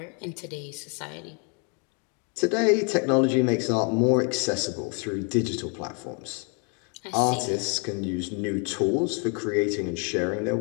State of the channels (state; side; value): quieter; right; 37.6 dB